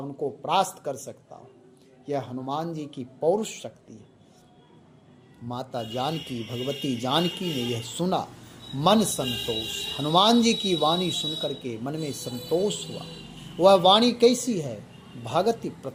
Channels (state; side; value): identical; both; correlation 1.00